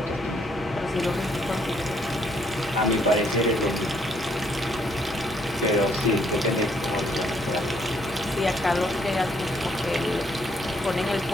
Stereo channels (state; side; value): normal; both; correlation 0.69